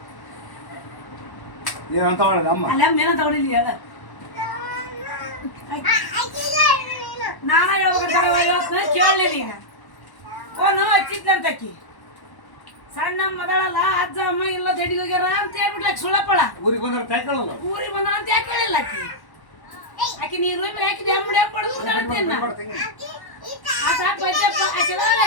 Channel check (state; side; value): late; right; 1.1 ms